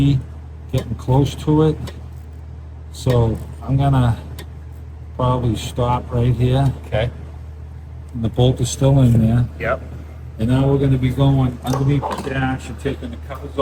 getting close to it. So I'm gonna probably stop right here. Okay. And the bolt is still in there. Yep. And now we're gonna be going underneath the dash and taking the covers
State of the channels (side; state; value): both; identical; correlation 1.00